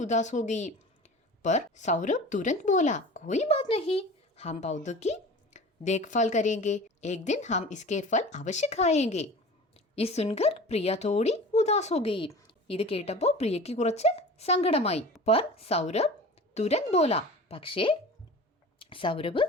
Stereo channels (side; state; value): both; normal; correlation 0.38